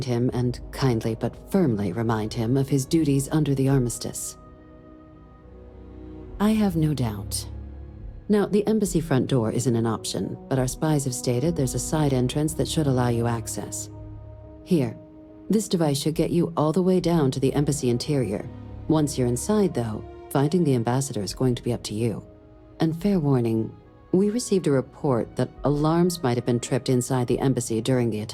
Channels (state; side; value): identical; both; correlation 1.00